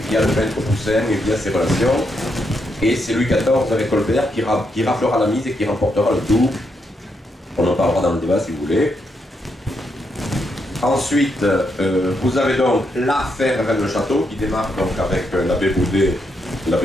via le peintre Poussin et via ses relations. Et c'est Louis XIV avec Colbert qui raflera la mise et qui remportera le tout. On en parlera dans le débat si vous voulez. Ensuite, vous avez donc l'affaire Rennes-le-Château qui démarre donc avec l'abbé Boudet, la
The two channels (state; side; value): normal; both; correlation 0.80